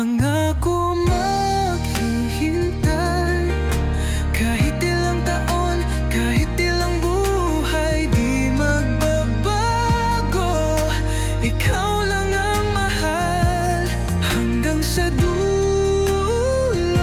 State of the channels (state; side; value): identical; both; correlation 1.00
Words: maghihintay, kahit ilang taon, kahit ilang buhay, di magbabago. Ikaw lang ang mahal hanggang sa dulo.